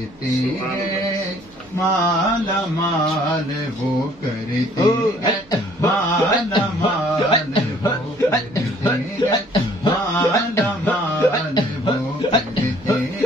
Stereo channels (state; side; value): noise; right; hum, 27 dB below the sound